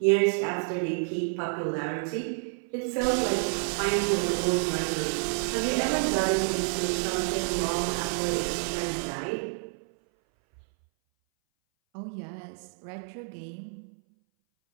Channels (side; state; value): left; silent; 59 dB below the other